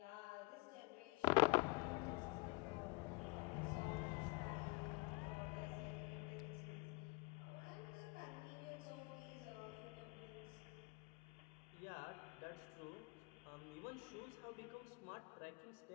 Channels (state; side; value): quieter; right; 28.6 dB